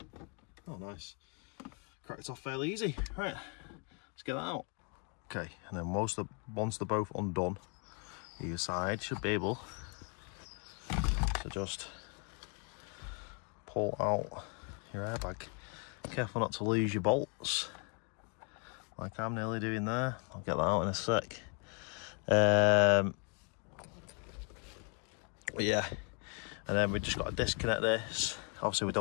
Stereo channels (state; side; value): quieter; right; 36.9 dB